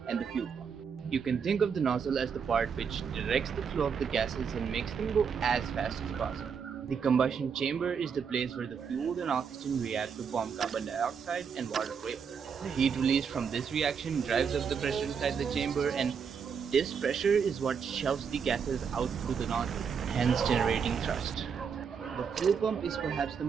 and the fuel pump. You can think of the nozzle as the part which directs the flow of the gases and makes them go as fast as possible. The combustion chamber is the place where the fuel and oxygen react to form carbon dioxide and water vapor. The heat released from this reaction drives up the pressure inside the chamber, and this pressure is what shoves the gases out through the nozzle, hence generating thrust. The fuel pump is perhaps the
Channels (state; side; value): quieter; left; 6.5 dB